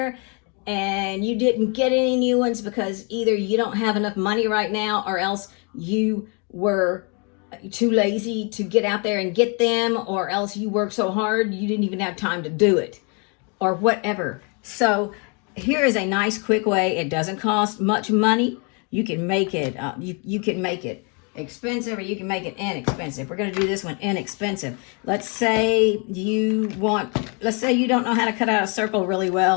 and you didn't get any new ones because either you don't have enough money right now, or else you were too lazy to get out there and get them, or else you worked so hard you didn't even have time to do it, or whatever. So here is a nice quick way. It doesn't cost much money. You can make it you can make it expensive, or you can make it inexpensive. We're going to do this one inexpensive. Let's say you don't know how to cut out a circle really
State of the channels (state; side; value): quieter; right; 34.8 dB